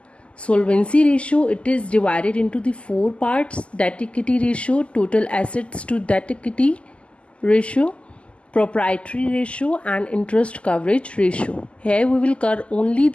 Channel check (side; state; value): right; late; 0.056 ms